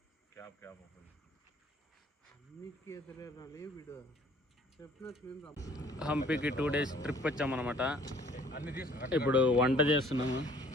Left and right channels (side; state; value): both; normal; correlation 0.56